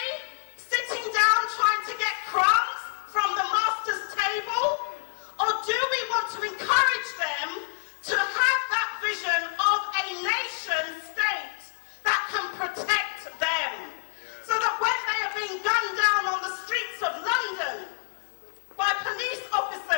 sitting down trying to get crumbs from the master's table? Or do we want to encourage them to have that vision of a nation state that can protect them? So that when they are being gunned down on the streets of London by police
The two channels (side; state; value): right; silent; 60 dB below the other